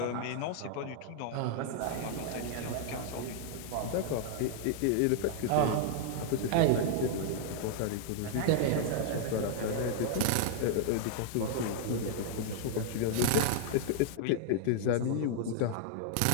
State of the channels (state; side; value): different; both; correlation -0.01